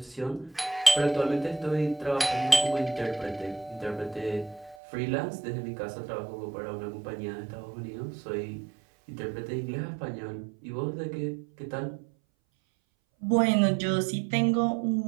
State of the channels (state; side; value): drops out; left; at 4.8 s